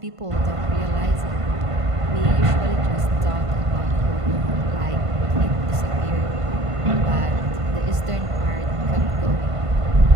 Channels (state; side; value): late; left; 1.5 ms